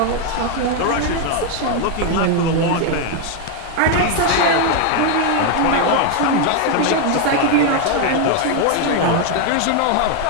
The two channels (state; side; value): different; both; correlation 0.01